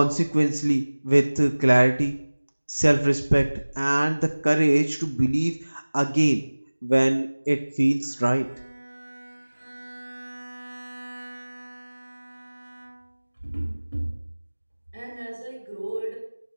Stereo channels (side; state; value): both; inverted; correlation -1.00